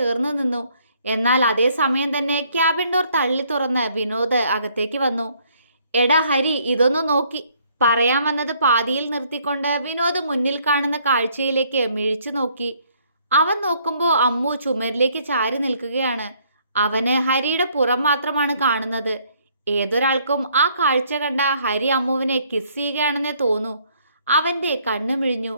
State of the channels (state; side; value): inverted; both; correlation -0.65